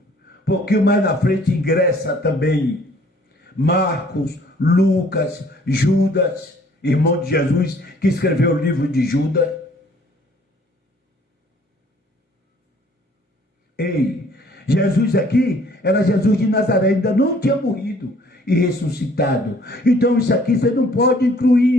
pouquinho mais na frente ingressa também Marcos, Lucas, Judas, irmão de Jesus, que escreveu o livro de Judas. Ei, Jesus aqui era Jesus de Nazaré, ainda não tinha morrido e ressuscitado. Então isso aqui você não pode incluir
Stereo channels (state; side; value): normal; both; correlation 0.58